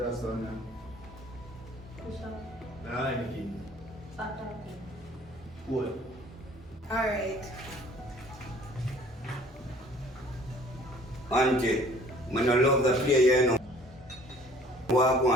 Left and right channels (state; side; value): normal; both; correlation 0.54